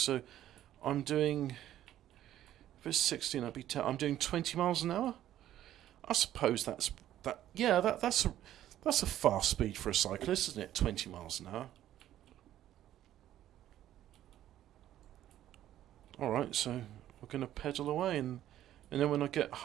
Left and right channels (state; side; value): quieter; left; 12.4 dB